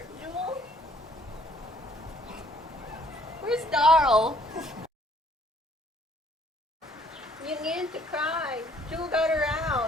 Jewel? Where's Darl? You needed to cry. Jewel got her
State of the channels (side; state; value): both; normal; correlation 0.61